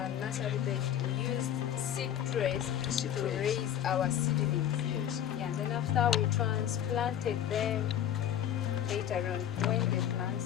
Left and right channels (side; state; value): right; quieter; 10.3 dB